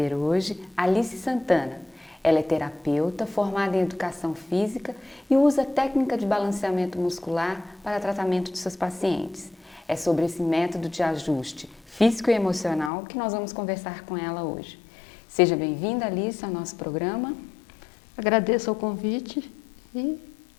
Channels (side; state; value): right; drops out; at 12.9 s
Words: hoje Alice Santana. Ela é terapeuta, formada em educação física e usa a técnica de balanceamento muscular para tratamento de seus pacientes. É sobre esse método de ajuste físico e emocional que nós vamos conversar com ela hoje. Seja bem-vinda, Alice, ao nosso programa. Agradeço o convite e